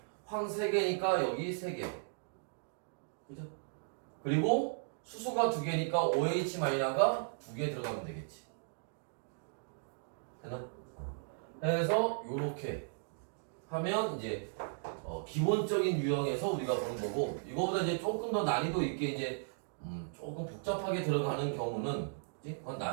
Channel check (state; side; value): silent; left; digital silence